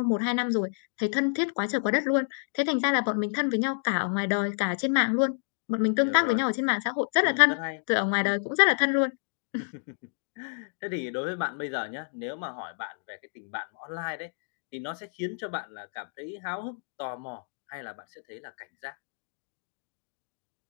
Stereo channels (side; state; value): right; silent; digital silence